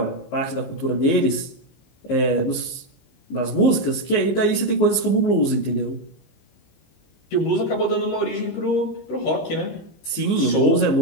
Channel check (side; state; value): right; late; 19 ms